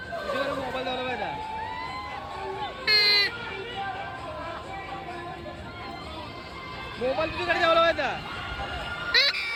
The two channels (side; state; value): both; identical; correlation 1.00